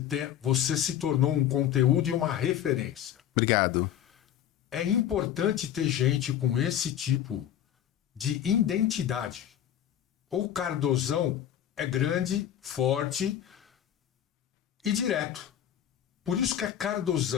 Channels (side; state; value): right; quieter; 10.6 dB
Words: se tornou um conteúdo e uma referência. Obrigado. É importante ter gente com esse tipo de identidade. O Cardozão é grande, forte e direto. Por isso que é